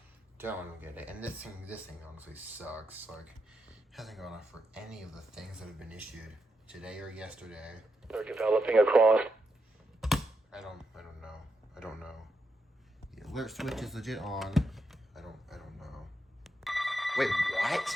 Don't get it. And this thing honestly sucks. Like, hasn't gone off for any of the things that have been issued today or yesterday. They're developing across. I don't know. The alert switch is legit on. I don't know. Wait, what?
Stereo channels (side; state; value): both; normal; correlation 0.84